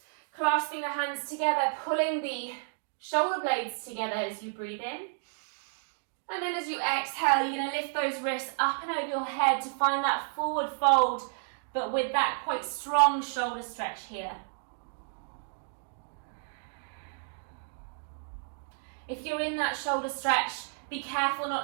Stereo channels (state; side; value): silent; left; digital silence